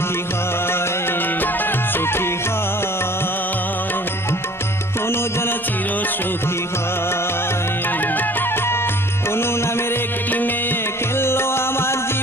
হয়, সুখী হয়, কোনো যেন চির সুখী হয়। কোনো নামের একটি মেয়ে খেললো আমার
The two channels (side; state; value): both; normal; correlation 0.50